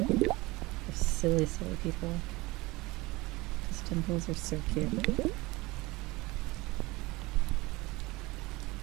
silly people. Because dimples are so cute.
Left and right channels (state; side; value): quieter; left; 22.0 dB